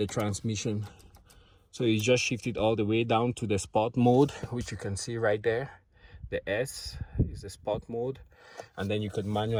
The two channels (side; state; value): both; identical; correlation 1.00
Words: transmission, so you just shift it all the way down to the sport mode, which you can see right there. The S is the sport mode, and then you could